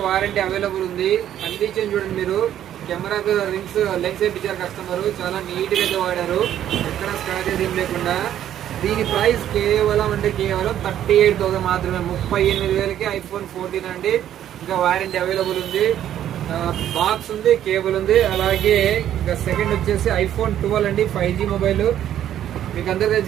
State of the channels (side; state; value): left; quieter; 11.1 dB